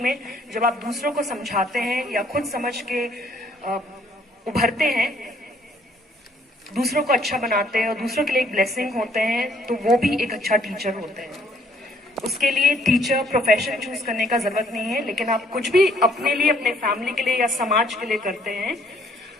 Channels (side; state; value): both; normal; correlation 0.63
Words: में जब आप दूसरों को समझाते हैं या खुद समझ के उभरते हैं, दूसरों को अच्छा बनाते हैं और दूसरों के लिए एक ब्लेसिंग होते हैं, तो वो भी एक अच्छा टीचर होते हैं। उसके लिए टीचर प्रोफेशन चूज करने का जरूरत नहीं है, लेकिन आप कुछ भी अपने लिए, अपने फैमिली के लिए या समाज के लिए करते हैं